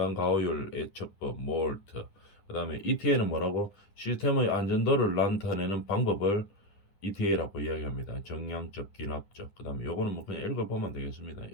가호율 예측법, 몰트, 그 다음에 ETA는 뭐라고? 시스템의 안전도를 나타내는 방법을 ETA라고 이야기합니다. 정량적, 기납적. 그 다음에 요거는 뭐 그냥 읽어보면 되겠습니다.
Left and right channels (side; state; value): right; late; 9.8 ms